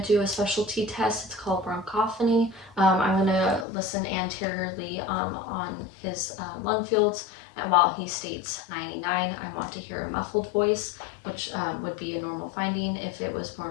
to do a specialty test. It's called bronchophony. I'm going to listen anteriorly on his lung fields, and while he states 99, I want to hear a muffled voice, which would be a normal finding. If it was more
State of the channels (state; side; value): drops out; right; at 3.7 s